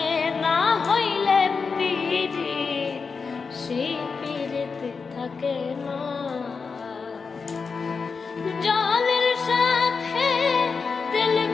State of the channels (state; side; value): quieter; right; 5.0 dB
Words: না হইলে পীড়িত সেই পীড়িত থাকে না। জলের সাথে তেল